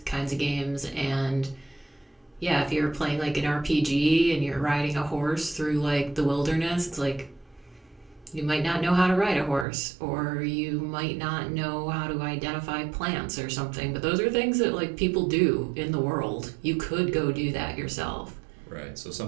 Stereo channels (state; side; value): drops out; left; at 9.7 s